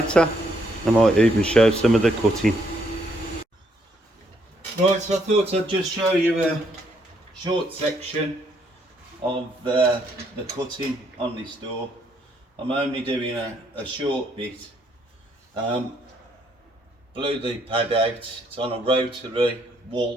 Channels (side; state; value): both; normal; correlation 0.71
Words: I might even show some of the cutting. Right, so I thought I'd just show you a short section of the cutting on this door. I'm only doing a short bit. Blew the pad out. It's on a rotary